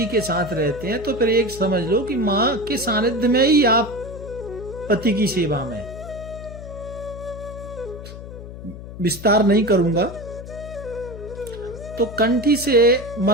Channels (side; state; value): left; noise; hum, 12 dB below the sound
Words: के साथ रहते हैं, तो फिर एक समझ लो कि मां के सानिध्य में ही आप पति की सेवा में। विस्तार नहीं करूंगा। तो कंठी से